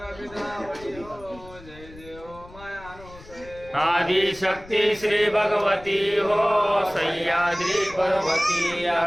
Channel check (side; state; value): left; noise; rumble, 20 dB below the sound